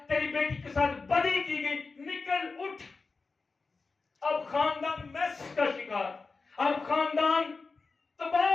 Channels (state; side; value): quieter; right; 4.2 dB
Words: تیری بیٹی کے ساتھ بدی کی گئی. نکل اٹھ. اب خاندان میس کا شکار، اب خاندان